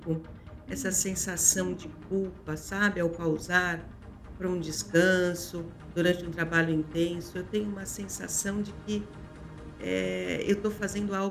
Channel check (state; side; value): identical; both; correlation 1.00